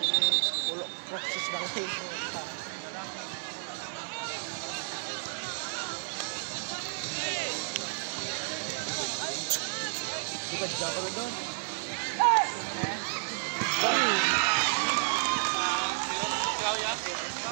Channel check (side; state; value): left; silent; digital silence